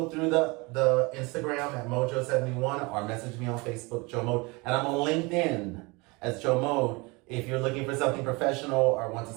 through the Instagram at Mojo71 or message me on Facebook, Joe Mode. And I'm on LinkedIn as Joe Mode. If you're looking for something professional or want to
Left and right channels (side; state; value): left; quieter; 26.4 dB